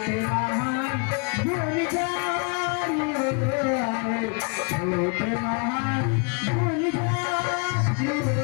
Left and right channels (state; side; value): quieter; right; 36.1 dB